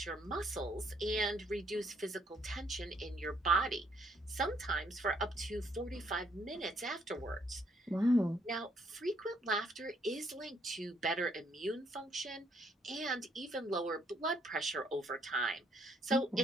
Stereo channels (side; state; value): both; normal; correlation 0.69